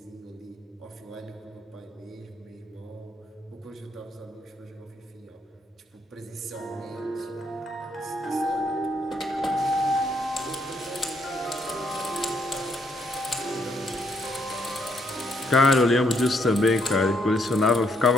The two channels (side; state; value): both; normal; correlation 0.73